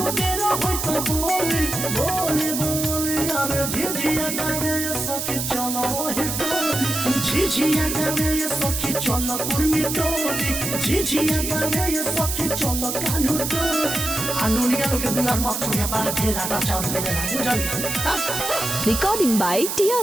देर होई तो बोली बोली बोली अरे झिझिया गावे सखी चलो हे झिझिया गावे ये सखी चलो कुर्मी टोली झिझिया गावे ये सखी चलो कानू टोली आनुनिया लोग के दुआर मत छोड़िया बाल घेरा टा चाउर ले लेना बुझल Recording by Tia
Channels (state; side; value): noise; right; hiss, 3 dB below the sound